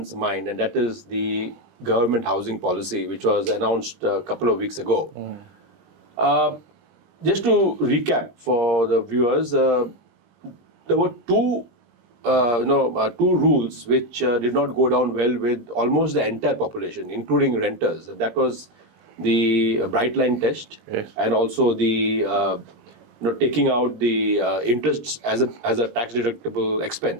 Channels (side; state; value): left; late; 20 ms